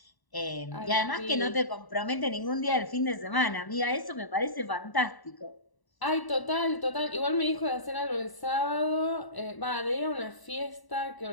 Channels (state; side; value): late; right; 1.0 ms